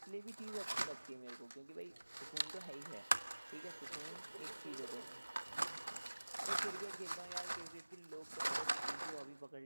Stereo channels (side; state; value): both; inverted; correlation -1.00